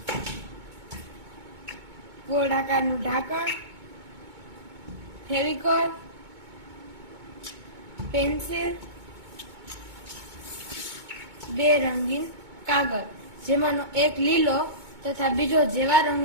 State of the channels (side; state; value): left; late; 2.2 ms